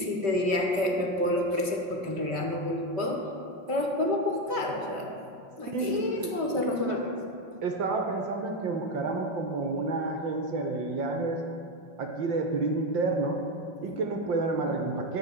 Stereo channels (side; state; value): left; late; 5.2 ms